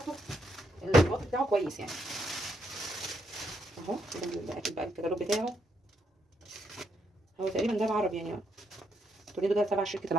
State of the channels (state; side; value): normal; both; correlation 0.77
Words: الوقت بتاعه كويس يعني اهو. ده اكيد بقى الكتالوج بتاعه هو تقريبا ده العربي يعني. توريدو ده تبع شركه